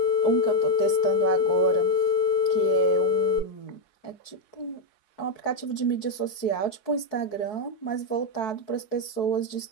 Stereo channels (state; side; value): late; right; 4.6 ms